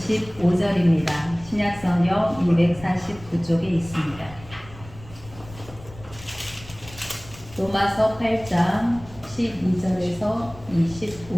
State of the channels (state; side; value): noise; left; rumble, 18 dB below the sound